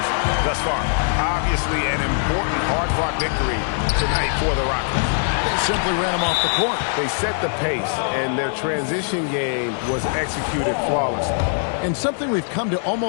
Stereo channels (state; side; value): silent; right; digital silence